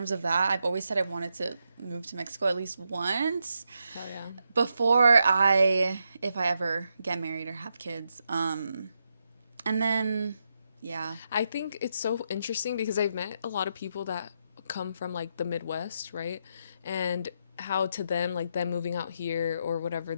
of that, I've always said I wanted to move to Mexico at least once Hell yeah. before if I ever get married or have kids. And then, yeah. I think it's so interesting because I've met a lot of people that come from like the Midwest, right? And how to them, like them moving out here or whatever,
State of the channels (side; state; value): both; inverted; correlation -0.82